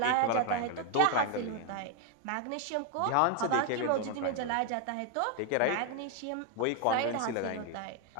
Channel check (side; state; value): both; different; correlation 0.00